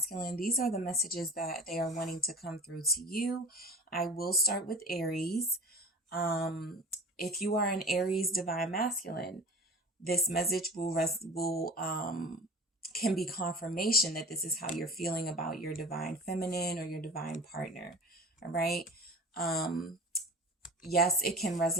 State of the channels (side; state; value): both; normal; correlation 0.38